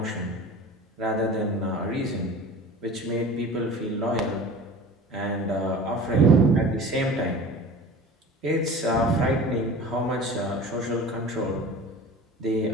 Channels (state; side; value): normal; both; correlation 0.39